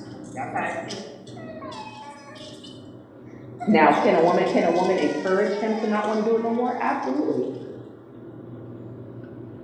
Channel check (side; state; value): both; identical; correlation 1.00